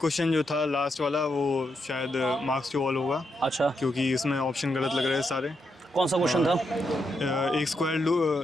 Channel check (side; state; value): both; normal; correlation 0.82